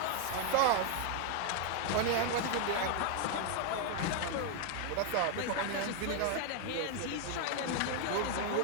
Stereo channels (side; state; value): both; different; correlation 0.00